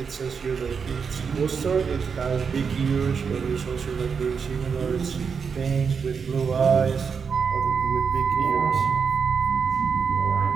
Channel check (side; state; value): left; quieter; 6.0 dB